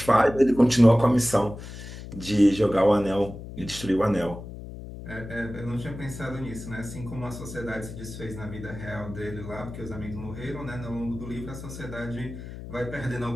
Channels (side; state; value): left; noise; hum, 11 dB below the sound